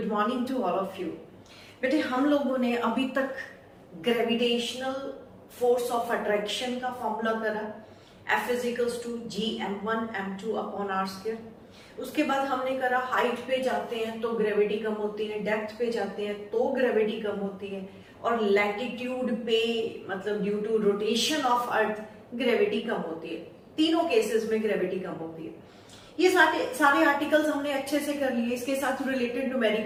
morning to all of you. बेटे हम लोगों ने अभी तक ग्रेविटेशनल फोर्स ऑफ अट्रैक्शन का फॉर्मूला करा, F is equals to G m1 m2 upon r square. उसके बाद हमने करा हाइट पे जाते हैं तो ग्रेविटी कम होती है, डेप्थ पे जाते हैं तो ग्रेविटी कम होती है, और लैटिट्यूड पे मतलब due to rotation of earth gravity कम होती है। तीनों केसेस में ग्रेविटी कम होती है। ये सारे आर्टिकल्स हमने अच्छे से कर लिए, इसके साथ रिलेटेड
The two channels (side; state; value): both; identical; correlation 1.00